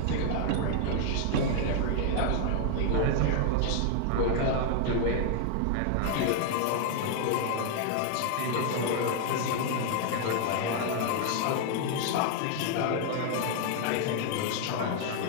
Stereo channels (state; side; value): different; both; correlation 0.00